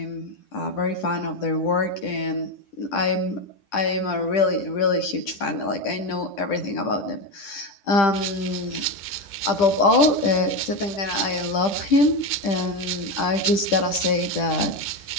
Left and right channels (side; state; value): right; late; 10 ms